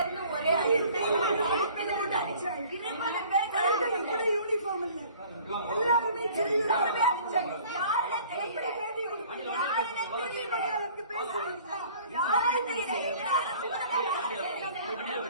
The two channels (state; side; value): inverted; both; correlation -0.51